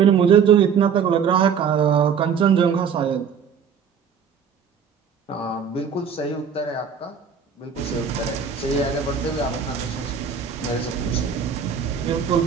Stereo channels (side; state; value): left; quieter; 6.9 dB